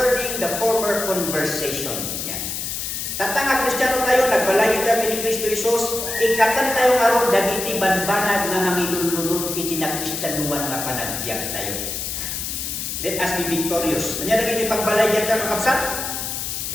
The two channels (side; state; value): left; noise; hiss, 4 dB below the sound